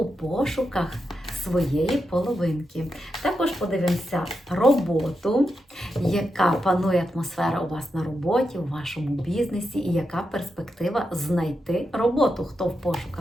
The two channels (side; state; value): both; normal; correlation 0.86